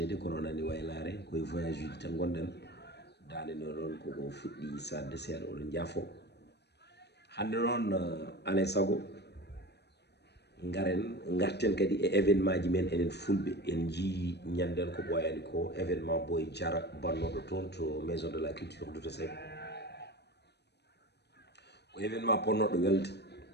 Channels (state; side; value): late; right; 0.49 ms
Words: kono nani waylare koye voyage uji tan gonɗen dande no ɗon koko fuɗɗi sadde seeɗa oɗon jaafo hande noon alay saago garen garten kadi e événement ji men enen fulɓe en jii ñanden ko ɓoyani ko événement Boy Diara bannoɗo toon to maison de la culture Douta Seck ko événement ponnoɗo welde